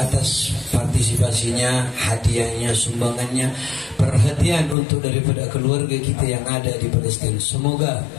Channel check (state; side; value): drops out; right; at 4.8 s